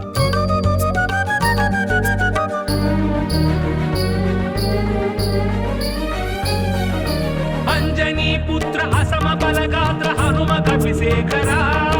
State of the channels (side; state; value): both; identical; correlation 1.00